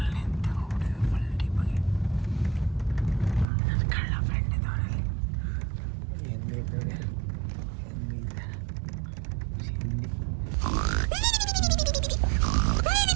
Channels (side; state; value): left; drops out; at 3.5 s